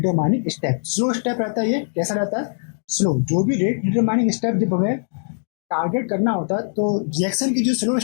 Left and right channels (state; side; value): silent; right; digital silence